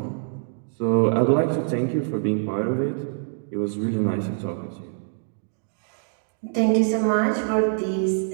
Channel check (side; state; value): left; silent; digital silence